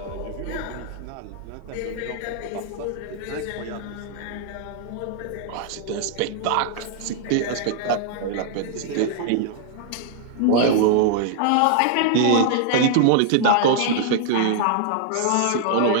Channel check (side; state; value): both; different; correlation -0.01